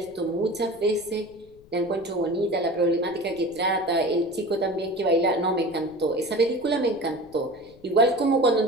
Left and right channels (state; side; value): noise; left; rumble, 26 dB below the sound